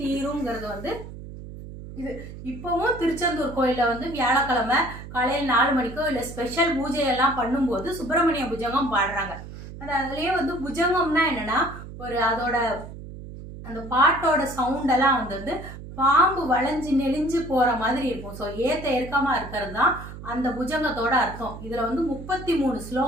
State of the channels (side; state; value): right; noise; hum, 12 dB below the sound